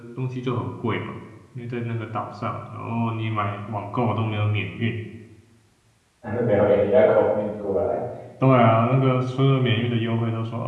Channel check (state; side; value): identical; both; correlation 1.00